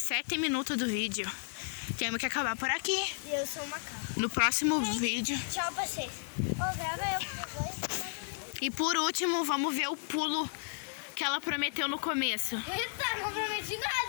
minutos do vídeo. Temos que acabar por aqui. E eu sou uma macaco. No próximo vídeo. Tchau pra vocês. Ô, grava eu com dois. E por último, vamos ver o pulo que ela prometeu no começo. Eita, não prometi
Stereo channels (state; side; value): silent; right; 56 dB below the other